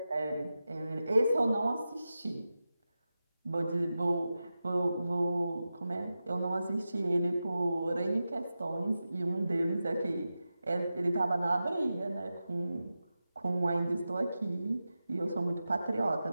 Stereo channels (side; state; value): both; inverted; correlation -0.92